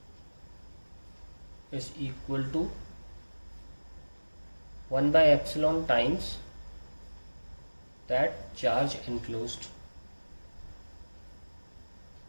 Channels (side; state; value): both; inverted; correlation -1.00